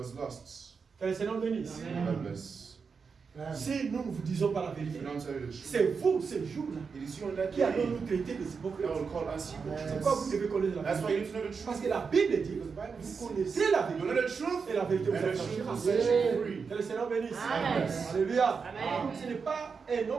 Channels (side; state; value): left; quieter; 5.4 dB